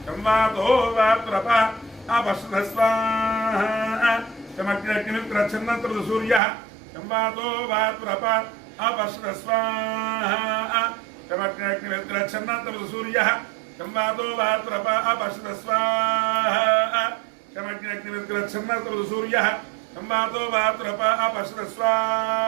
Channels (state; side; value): drops out; left; at 6.4 s